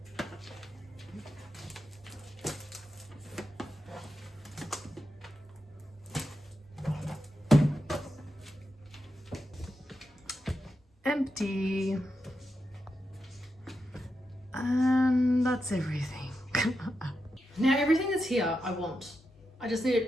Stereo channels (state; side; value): normal; both; correlation 0.87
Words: Empty, and that's everything. Now everything that's here I just need